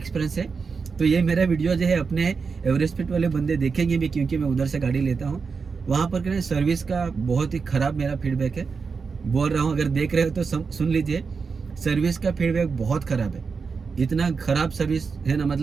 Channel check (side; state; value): left; quieter; 5.1 dB